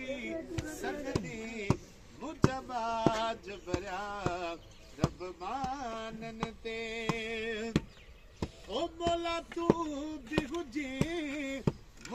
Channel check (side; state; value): both; identical; correlation 1.00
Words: मुजबाज भरिया रब माननि ते ओ मौला तू बि हुजे